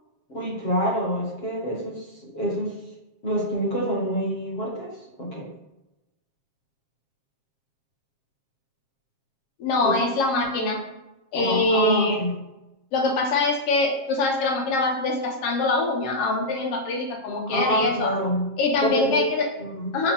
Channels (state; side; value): late; right; 7.4 ms